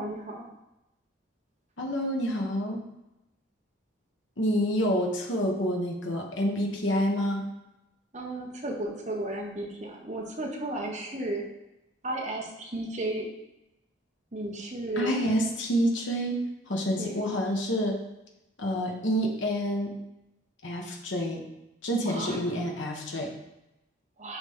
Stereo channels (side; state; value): both; normal; correlation 0.52